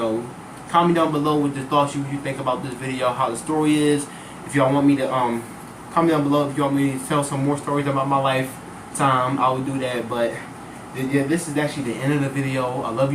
comment down below with the thoughts you think about this video, how the story is. If y'all want me to, comment down below if you want me to tell some more stories about my lifetime, I will do that. But yeah, this is actually the end of the video. I love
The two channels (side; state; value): both; identical; correlation 1.00